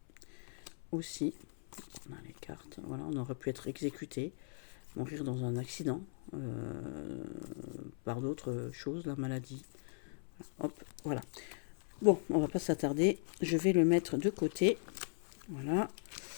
aussi. On a les cartes, voilà, on aurait pu être exécuté, mourir dans un accident, par d'autres choses, la maladie. Hop, voilà. Bon, on va pas s'attarder, je vais le mettre de côté. Voilà.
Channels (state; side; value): silent; right; 52 dB below the other